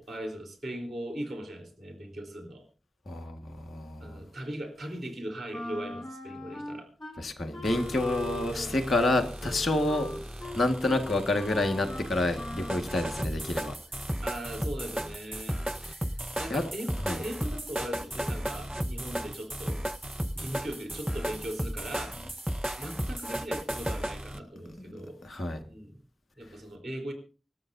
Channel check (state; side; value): normal; both; correlation 0.85